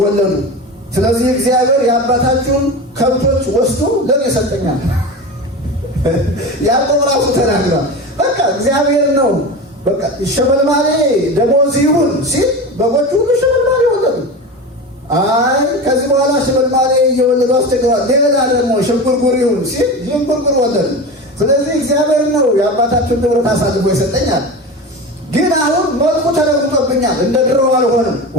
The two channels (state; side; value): normal; both; correlation 0.27